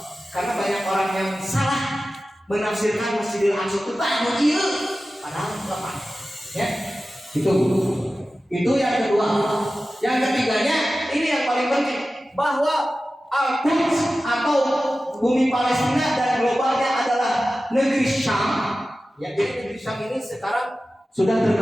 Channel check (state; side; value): normal; both; correlation 0.95